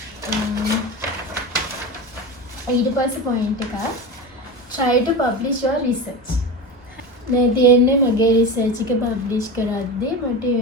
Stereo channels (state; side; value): normal; both; correlation 0.24